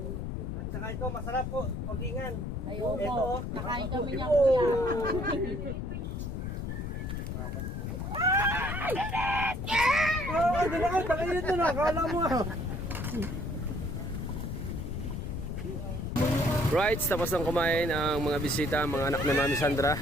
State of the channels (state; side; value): noise; left; rumble, 4 dB below the sound